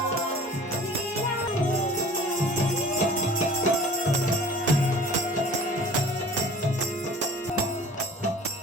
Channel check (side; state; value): both; normal; correlation 0.46